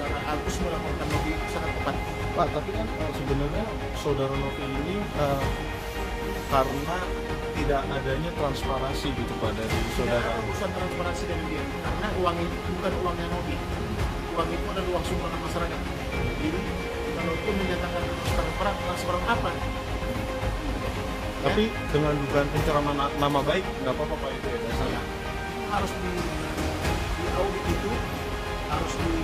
Agus melaporkan Novi itu sangat tepat. Pak, tapi kan sebenarnya saudara Novi ini karena tidak adanya transparansi gitu Pak dari Tidak saudara ada urusan transparansi dengan dia, karena uang itu bukan uangnya Novi. Uang itu adalah uang sumbangan masyarakat. Jadi kalau itu menyatakan transparan apa? Tapi dengan dugaan pencemaran nama baik nggak apa-apa Pak itu ya dasarnya. Harus di audit itu harus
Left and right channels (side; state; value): both; identical; correlation 1.00